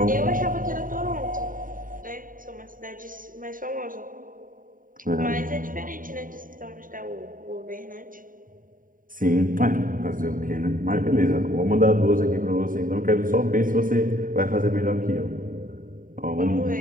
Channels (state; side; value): late; left; 0.40 ms